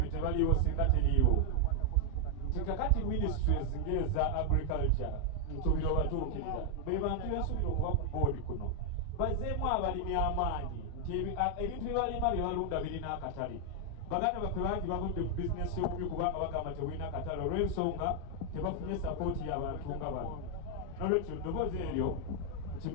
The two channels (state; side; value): different; both; correlation 0.00